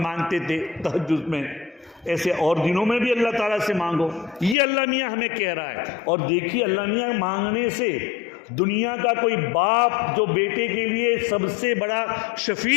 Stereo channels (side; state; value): right; drops out; at 4.5 s